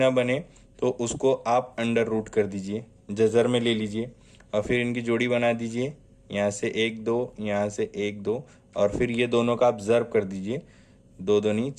बने, तो उसको आप अंडर रूट कर दीजिए, जज़र में ले लीजिए और फिर इनकी जोड़ी बना दीजिए। यहाँ से 1 2, यहाँ से 1 2, और फिर ये दोनों का आप ज़र्ब कर दीजिए, 2 दूनी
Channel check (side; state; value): both; identical; correlation 1.00